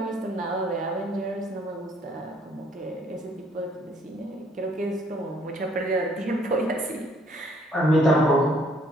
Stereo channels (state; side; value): normal; both; correlation 0.63